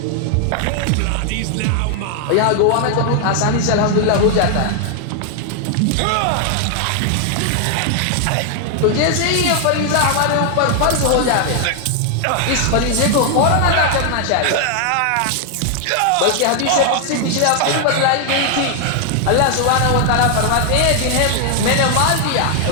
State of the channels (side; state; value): both; different; correlation 0.00